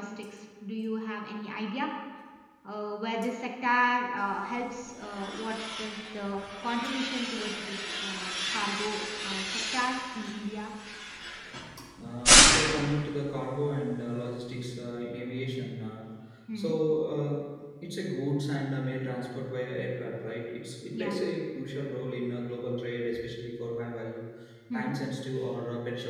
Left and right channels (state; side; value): identical; both; correlation 1.00